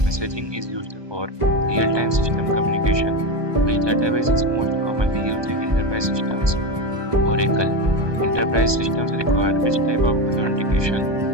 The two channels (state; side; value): late; left; 1.2 ms